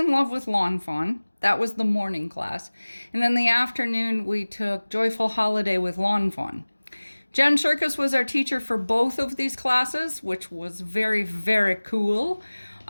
Love with Lawn Fawn. That was the morning class. And in the afternoon, we took Joyful Holiday with Lawn Fawn. Jen Circus was our teacher for both of these classes, which was very, very cool.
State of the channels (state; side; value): inverted; both; correlation -1.00